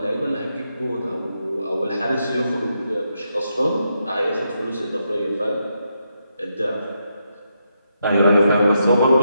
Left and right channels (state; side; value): inverted; both; correlation -0.82